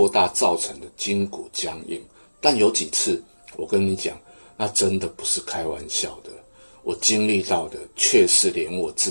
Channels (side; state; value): both; inverted; correlation -1.00